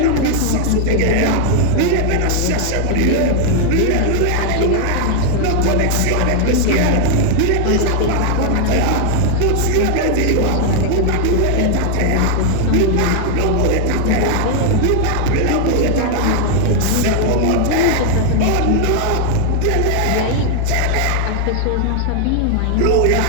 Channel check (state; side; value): different; both; correlation 0.00